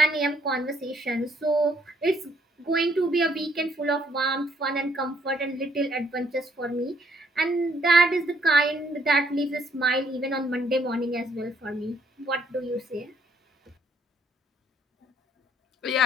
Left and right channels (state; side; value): normal; both; correlation 0.67